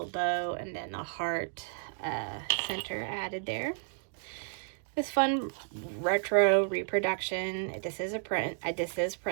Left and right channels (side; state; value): left; silent; digital silence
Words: bow, and then the heart center added there. This fun retro reproduction. This is a print. This is